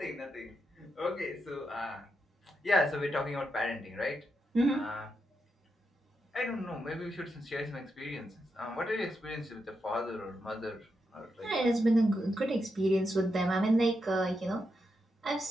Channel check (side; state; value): both; normal; correlation 0.84